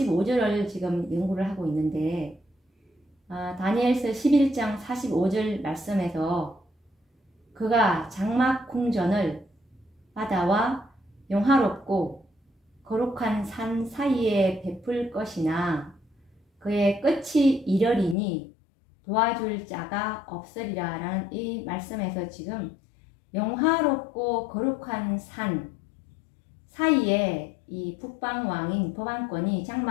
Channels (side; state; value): right; drops out; at 18.2 s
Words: 지금 연구를 하고 있는데, 다니엘서 11장 45절 말씀에서 그가 장막 궁전을 바다와 영화롭고 거룩한 산 사이에 베풀 것이나 그의 끝이 이르리니 도와줄 자가 없으리라 라는 이 말씀에서 지금 영화롭고 거룩한 산 사이에 이 북방왕인 법안권이